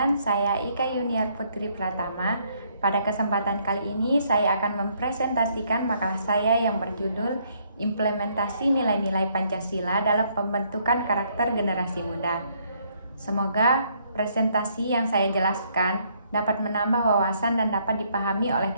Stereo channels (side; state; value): both; inverted; correlation -0.69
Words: saya Ika Yuniar Putri Pratama. Pada kesempatan kali ini, saya akan mempresentasikan makalah saya yang berjudul Implementasi Nilai-Nilai Pancasila dalam Pembentukan Karakter Generasi Muda. Semoga presentasi yang saya jelaskan dapat menambah wawasan dan dapat dipahami oleh